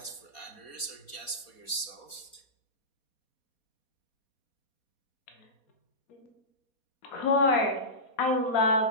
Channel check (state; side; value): late; right; 4.2 ms